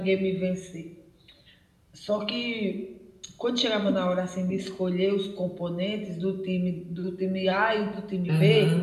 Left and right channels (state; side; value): identical; both; correlation 1.00